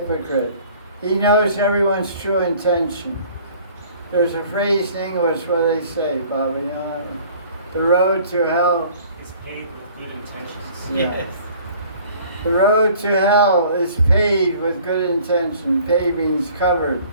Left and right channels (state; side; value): inverted; both; correlation -0.52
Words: He knows everyone's true intention. There's a phrase in English where they say, Baba, you know, the road to hell is paved with good intentions. Yeah. Yes. The road to hell is paved with good intention. Paved means covered.